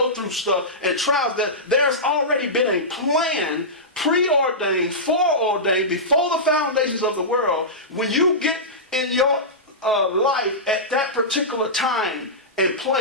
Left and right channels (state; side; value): normal; both; correlation -0.15